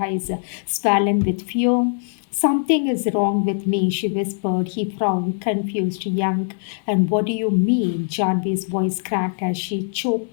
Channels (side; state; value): right; silent; 62 dB below the other